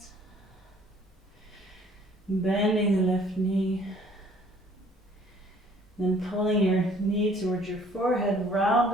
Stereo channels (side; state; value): both; normal; correlation 0.57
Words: Bending the left knee. Then pulling your knee towards your forehead,